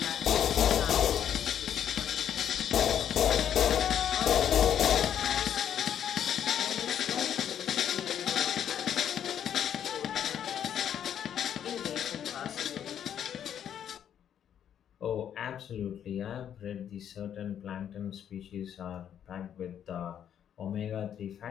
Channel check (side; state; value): right; quieter; 9.4 dB